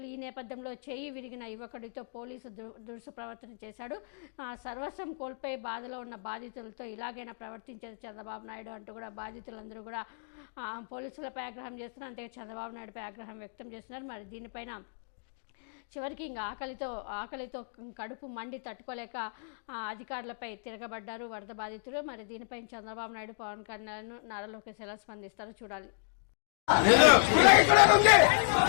ఈ నేపథ్యంలో చేయి విరిగిన యువకుడితో పోలీసు దురుసు ప్రవర్తన చేశాడు. సర్వస్వం కోల్పోయి బాధలో ఉన్న బాధితులతో ఇలాగైనా ప్రవర్తించేది చంద్రబాబు నాయుడు అంటూ కూడా బాధితులందరూ కూడా పోలీసులపై ఆగ్రహం చేస్తున్నారు. అంతే చంద్రబాబు నాయుడుపై ఆగ్రహం వ్యక్తం చేస్తున్నారు. మరి దీనిపైన చివరికి ఇంకా ఆకలితో కడుపు మండి తట్టుకోలేక అధికారులపై తిరగబడ్డారు వరద బాధితులు. మరి దీనిపై చంద్రబాబు నాయుడు, పవన్ కళ్యాణ్, నారా లోకేష్ ఎలా స్పందిస్తారో చూడాలి.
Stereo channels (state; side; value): silent; right; digital silence